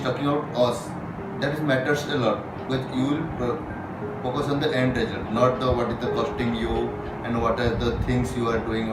talking about us. That matters a lot, because you will focus on the end result, not the what is the costing you and what are the things you are doing,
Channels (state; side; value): identical; both; correlation 1.00